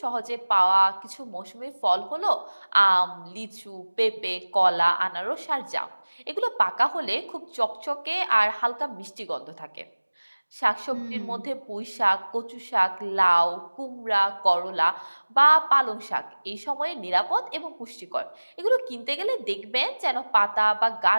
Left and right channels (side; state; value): both; inverted; correlation -1.00